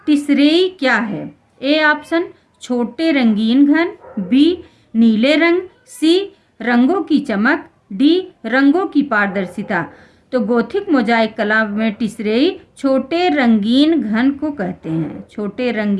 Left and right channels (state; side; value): identical; both; correlation 1.00